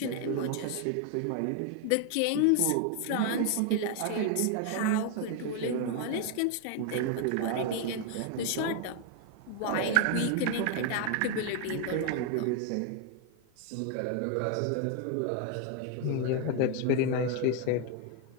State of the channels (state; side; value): different; both; correlation 0.01